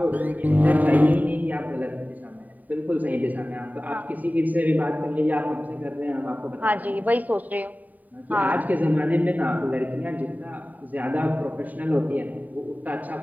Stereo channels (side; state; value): left; late; 0.079 ms